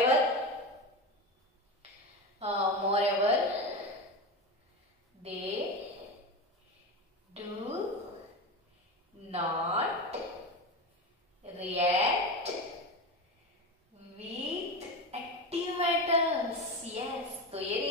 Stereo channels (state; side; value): normal; both; correlation 0.21